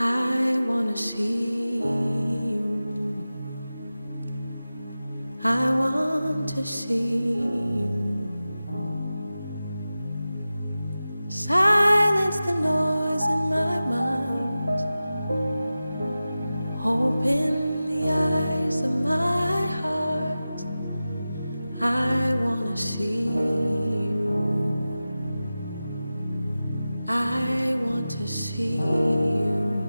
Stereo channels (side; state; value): both; inverted; correlation -0.95